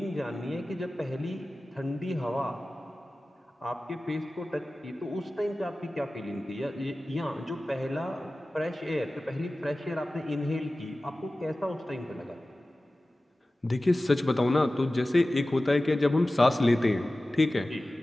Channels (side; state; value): both; normal; correlation 0.96